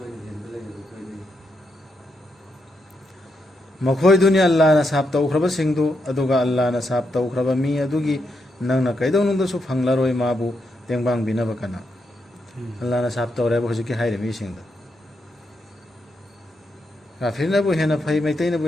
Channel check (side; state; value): both; normal; correlation 0.82